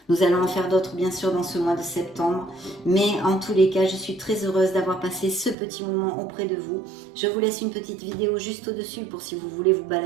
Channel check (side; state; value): left; drops out; at 5.6 s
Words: Nous allons en faire d'autres bien sûr dans ce mois de septembre. Mais en tous les cas, je suis très heureuse d'avoir passé ce petit moment auprès de vous. Je vous laisse une petite vidéo juste au-dessus pour si vous voulez vous